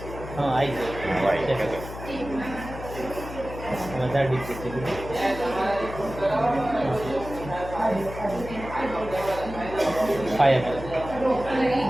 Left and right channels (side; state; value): left; noise; hum, 11 dB below the sound